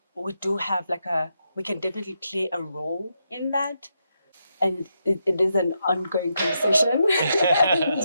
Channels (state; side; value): inverted; both; correlation -0.83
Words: do have we can definitely play a role in that. And it is an ongoing conversation.